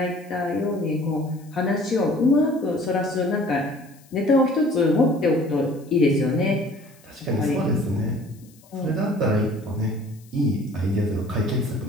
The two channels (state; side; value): noise; left; hiss, 28 dB below the sound